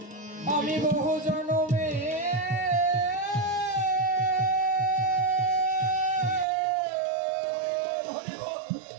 আমি বহু জনমে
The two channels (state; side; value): drops out; left; at 6.5 s